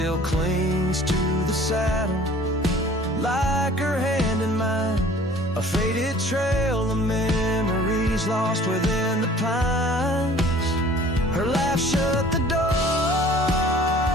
clings to the saddle, like her hand in mine, a faded trail of memories lost within the pines. Her laugh shut the door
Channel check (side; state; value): both; normal; correlation 0.50